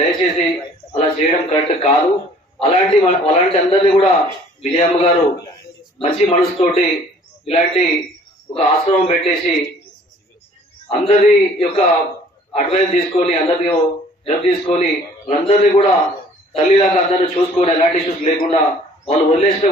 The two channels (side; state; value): both; normal; correlation 0.54